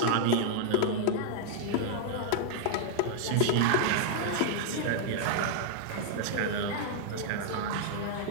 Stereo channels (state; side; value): different; both; correlation -0.01